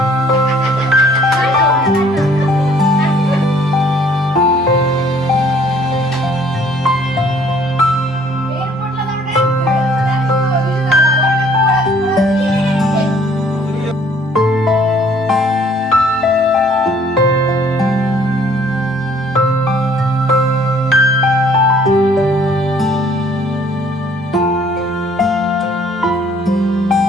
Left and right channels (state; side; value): normal; both; correlation 0.59